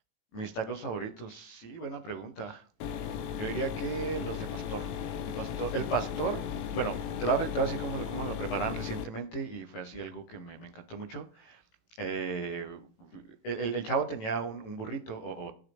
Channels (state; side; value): late; right; 18 ms